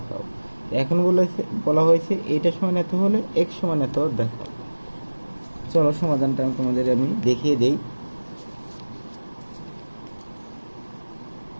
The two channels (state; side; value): inverted; both; correlation -1.00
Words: এখন বলা হয়েছে এইটার সমান এত হলে এক্স সমান এত দেখাও। চলো সমাধানটা তোমাদের আমি দেখিয়ে দেই।